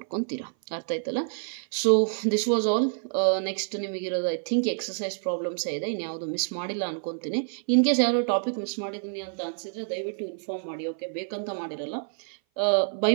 ಅರ್ಥ ಆಯ್ತಲ್ಲ. So this was all. Next ನಿಮಗಿರೋದು ಐ ಥಿಂಕ್ ಎಕ್ಸಸೈಸ್ ಪ್ರಾಬ್ಲಮ್ಸ್ ಇದೆ, ಇನ್ಯಾವುದು ಮಿಸ್ ಮಾಡಿಲ್ಲ ಅನ್ಕೊತೀನಿ. ಇನ್ ಕೇಸ್ ಯಾರೋ ಟಾಪಿಕ್ ಮಿಸ್ ಮಾಡಿದ್ದೀನಿ ಅಂತ ಅನ್ಸಿದ್ರೆ ದಯವಿಟ್ಟು ಇನ್ಫಾರ್ಮ್ ಮಾಡಿ. ಓಕೆ, ಬೇಕಂತ ಮಾಡಿರಲ್ಲ, ಬೈ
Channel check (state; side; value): silent; left; 57 dB below the other